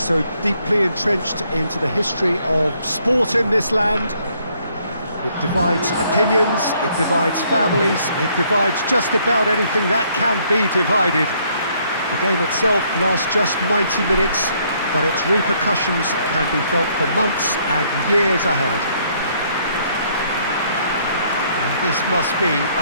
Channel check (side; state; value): both; inverted; correlation -0.67